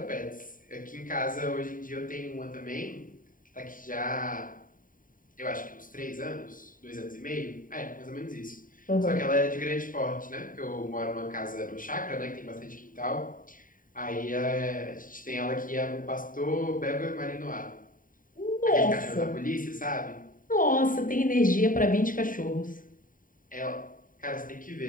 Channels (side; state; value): right; late; 0.39 ms